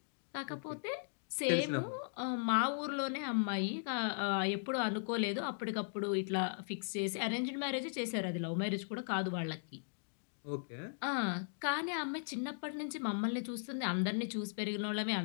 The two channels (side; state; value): right; silent; digital silence